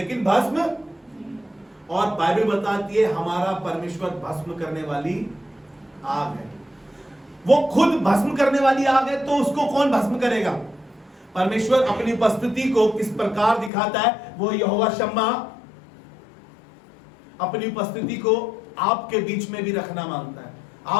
भस्म, और बाइबल बताती है हमारा परमेश्वर भस्म करने वाली आग है। वो खुद भस्म करने वाली आग है, तो उसको कौन भस्म करेगा? परमेश्वर अपनी उपस्थिति को किस प्रकार दिखाता है? वो यहोवा शम्मा अपनी उपस्थिति को आपके बीच में भी रखना मांगता है,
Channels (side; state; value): right; drops out; at 13.7 s